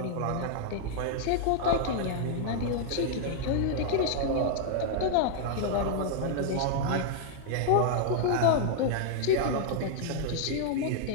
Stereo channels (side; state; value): both; different; correlation -0.01